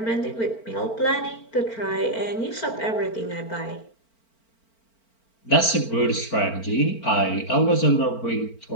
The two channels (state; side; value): late; right; 4.4 ms